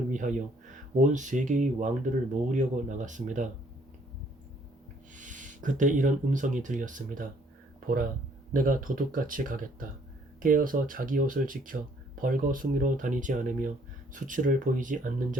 위하여 온 세계의 왕들을 모으려고 나갔습니다. 그때 이런 음성이 들렸습니다. 보라, 내가 도둑같이 가겠다. 깨어서 자기 옷을 지켜 벌거숭이로 다니지 않으며 수치를 보이지 않는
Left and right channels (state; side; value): normal; both; correlation 0.63